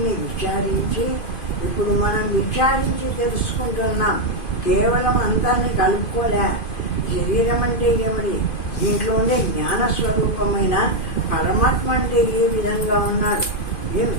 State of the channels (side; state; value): right; late; 2.5 ms